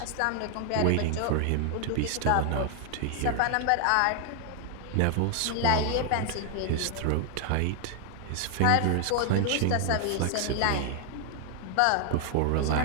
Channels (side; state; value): both; different; correlation 0.00